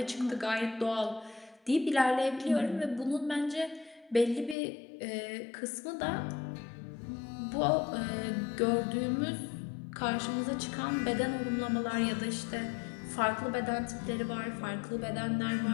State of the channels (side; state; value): right; drops out; at 4.5 s